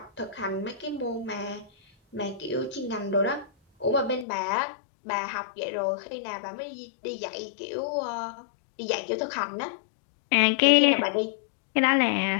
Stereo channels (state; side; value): drops out; right; at 4.2 s